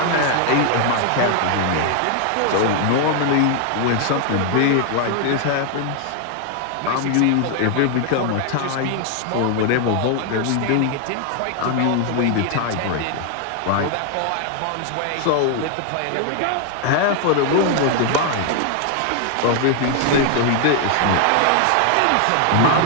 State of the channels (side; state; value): both; different; correlation 0.00